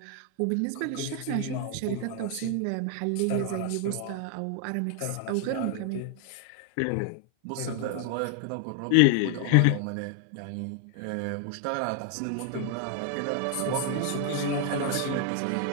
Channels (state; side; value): different; both; correlation 0.00